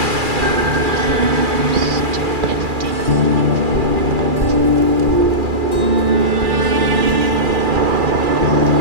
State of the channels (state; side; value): late; left; 2.4 ms